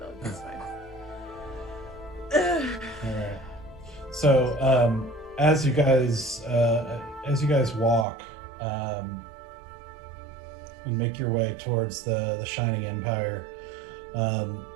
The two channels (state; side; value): drops out; left; at 8.1 s